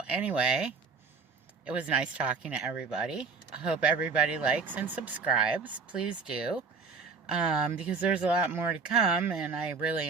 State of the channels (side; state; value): left; quieter; 4.9 dB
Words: anyway, it was nice talking to everybody. I hope everybody likes and subscribes. Please do. Because there's a lot more to come, and I really